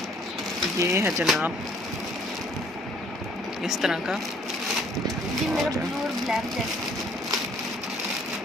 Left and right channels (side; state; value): both; normal; correlation 0.60